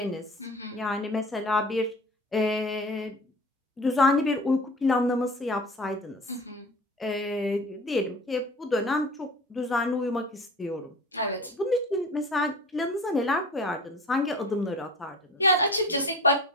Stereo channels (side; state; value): both; normal; correlation 0.39